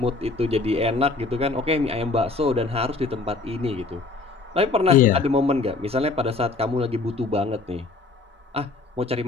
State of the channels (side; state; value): right; quieter; 3.7 dB